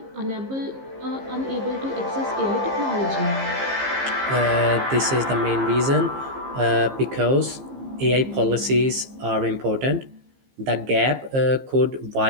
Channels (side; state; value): left; late; 15 ms